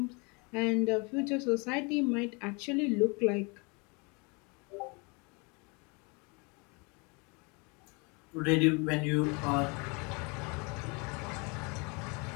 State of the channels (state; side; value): quieter; right; 30.6 dB